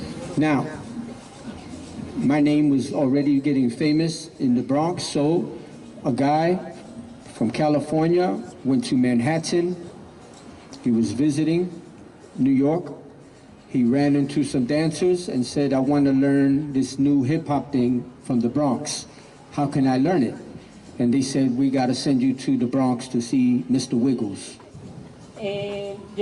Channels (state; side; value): identical; both; correlation 1.00